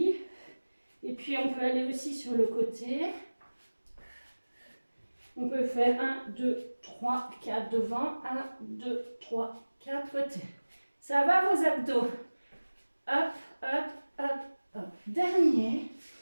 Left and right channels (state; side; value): inverted; both; correlation -1.00